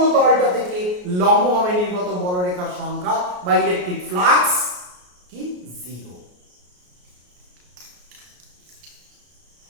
তলটা থেকে লম্বভাবে নির্গত বলরেখার সংখ্যা বা ইলেকট্রিক ফ্লাক্স কি জিরো।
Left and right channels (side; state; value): left; late; 33 ms